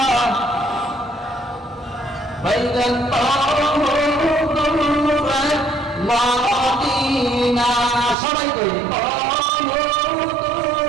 মাদিনা সবাই কই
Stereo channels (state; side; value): drops out; left; at 8.2 s